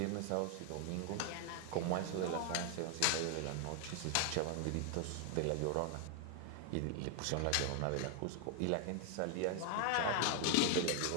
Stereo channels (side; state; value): both; different; correlation 0.00